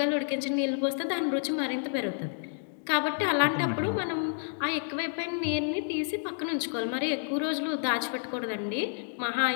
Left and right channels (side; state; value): right; silent; digital silence